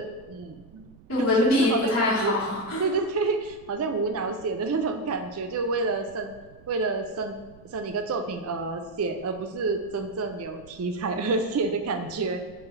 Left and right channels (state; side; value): noise; right; rumble, 23 dB below the sound